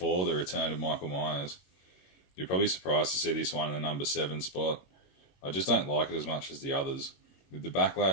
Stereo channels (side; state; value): right; late; 21 ms